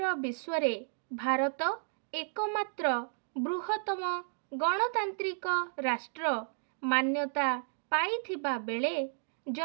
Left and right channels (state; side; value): silent; left; digital silence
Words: विश्व रे भारत एकमात्र बृहत्तम गणतांत्रिक राष्ट्र मान्यता पाइथिबा बेले